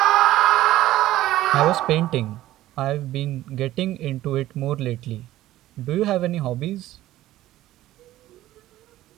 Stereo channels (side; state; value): left; quieter; 15.0 dB